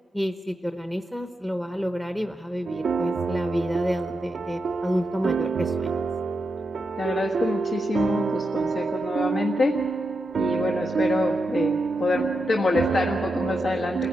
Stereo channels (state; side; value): normal; both; correlation 0.86